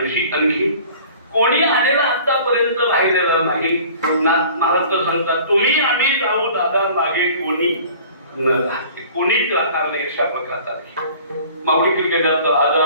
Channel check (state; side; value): inverted; both; correlation -0.47